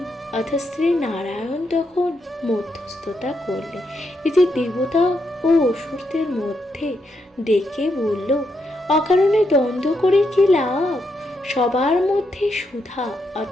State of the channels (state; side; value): normal; both; correlation 0.81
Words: অর্থাৎ শ্রী নারায়ণ তখন মধ্যস্থতা করলেন। এই যে দেবতা ও অসুরদের মধ্যে ডেকে বলল, অকারণে দ্বন্দ্ব করে কি লাভ? সবার মধ্যে সুধা